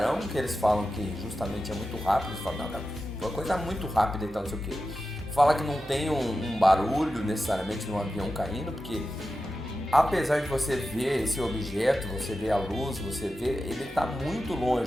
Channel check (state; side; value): noise; right; hum, 22 dB below the sound